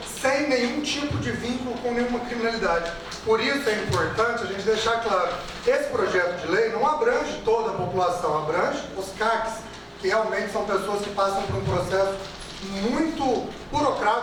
sem nenhum tipo de vínculo com nenhuma criminalidade. Por isso é importante a gente deixar claro, esse projeto de lei não abrange toda a população, abrange os CACs, que realmente são pessoas que passam por um processo muito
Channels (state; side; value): identical; both; correlation 1.00